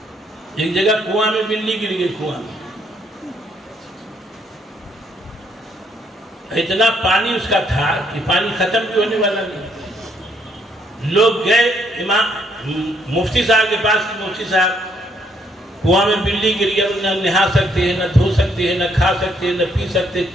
ایک جگہ کنواں میں بلی گر گئی، کنواں اتنا پانی اس کا تھا کہ پانی ختم بھی ہونے والا نہیں۔ لوگ گئے امام مفتی صاحب کے پاس، مفتی صاحب کنواں میں بلی گر گیا، نہ نہا سکتے ہیں، نہ دھو سکتے ہیں، نہ کھا سکتے ہیں، نہ پی سکتے،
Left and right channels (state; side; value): normal; both; correlation 0.70